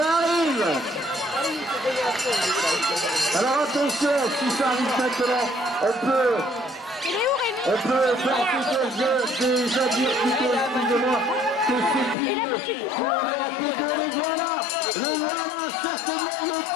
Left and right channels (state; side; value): drops out; right; at 12.2 s